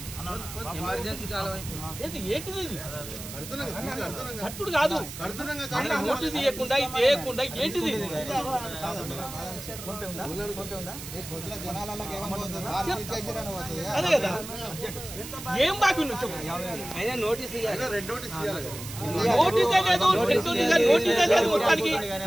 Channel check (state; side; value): noise; right; hiss, 11 dB below the sound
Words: ఏంటిది కట్టుడు కాదు, నోటీస్ ఇవ్వకుండా ఇది చేయకుండా ఏంటిది? అదే కదా, ఏం బాకీ నువ్వు చెప్పు. నోటీస్ నోటీసే లేదు, మొత్తానికి